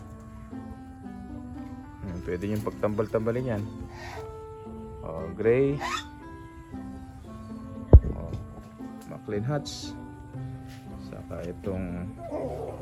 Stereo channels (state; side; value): identical; both; correlation 1.00